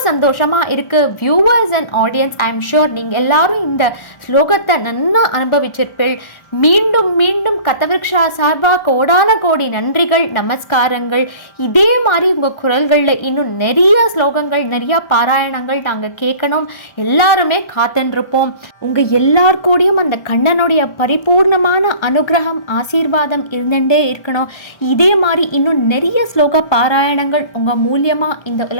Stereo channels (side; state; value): right; late; 1.4 ms